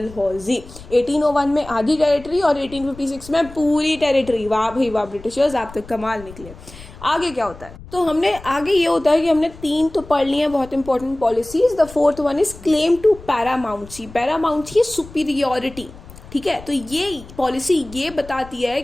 1801 में आधी टेरिटरी और 1856 में पूरी टेरिटरी. वाह भाई वाह ब्रिटिशर्स, आप तो कमाल निकले. आगे क्या होता है? तो हमने आगे ये होता है कि हमने 3 तो पढ़ लिए हैं बहुत important policies. The fourth one is claim to paramountcy. Paramountcy superiority. ठीक है. तो ये पॉलिसी ये बताती है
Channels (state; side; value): noise; left; rumble, 18 dB below the sound